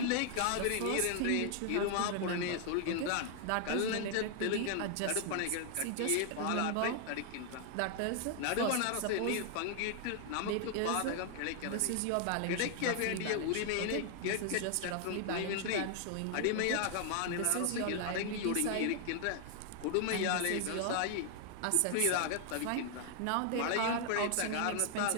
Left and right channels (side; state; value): both; different; correlation 0.00